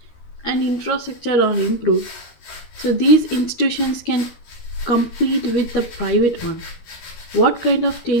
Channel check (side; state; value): right; late; 12 ms